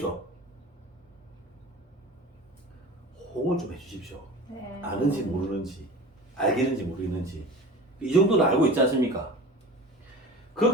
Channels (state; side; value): normal; both; correlation 0.37